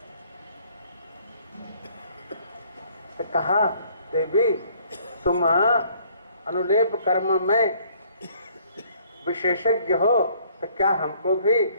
तो कहा देवी तुम अनुलेप कर्म में विशेषज्ञ हो तो क्या हमको भी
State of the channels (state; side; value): inverted; both; correlation -0.61